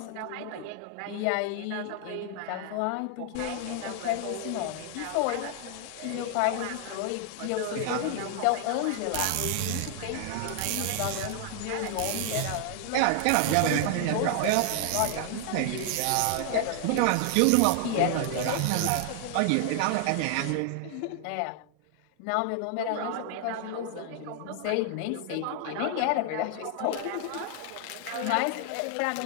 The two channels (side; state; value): both; different; correlation 0.00